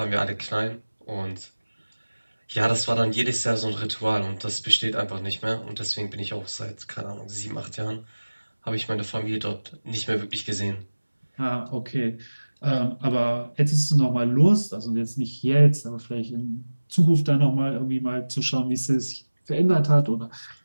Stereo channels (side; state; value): both; inverted; correlation -1.00